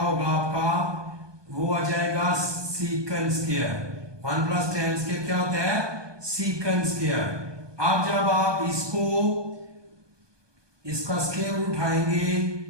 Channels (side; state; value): left; late; 1.2 ms